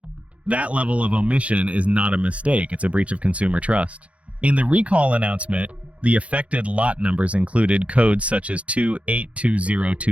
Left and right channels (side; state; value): left; late; 0.064 ms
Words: That level of omission is not a mistake, it's a breach of consumer trust. In the recall announcement, the affected lot numbers included codes such as